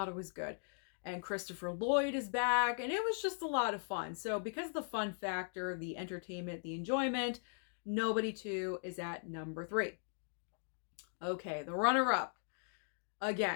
it was good. And Christopher Lloyd is back, and it was just a lot of fun. So because of the fun factor, the entertainment, the enjoyment, Nobody 2 is at number 3. Okay, the runner-up.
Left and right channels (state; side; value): silent; right; digital silence